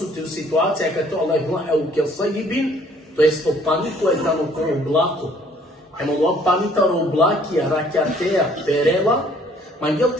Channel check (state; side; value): normal; both; correlation 0.59